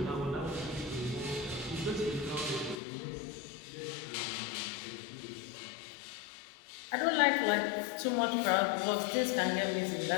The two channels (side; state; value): right; drops out; at 2.8 s